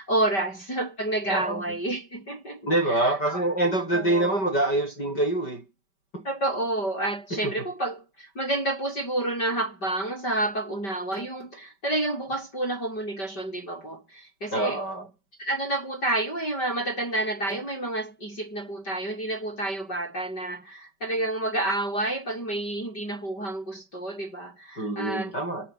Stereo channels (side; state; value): right; late; 5.2 ms